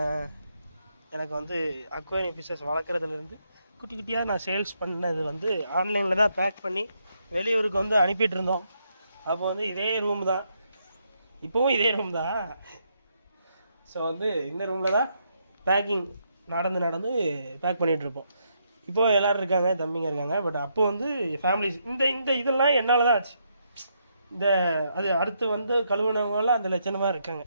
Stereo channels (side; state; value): both; inverted; correlation -0.77